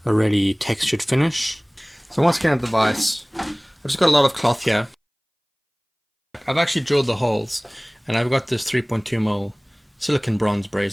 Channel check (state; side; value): identical; both; correlation 1.00